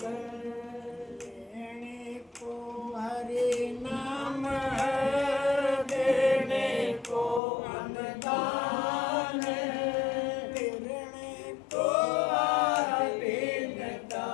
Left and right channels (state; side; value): drops out; right; at 7.4 s